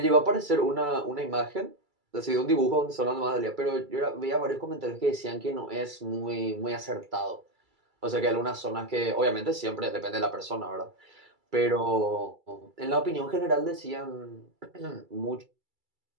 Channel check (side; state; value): left; late; 2.3 ms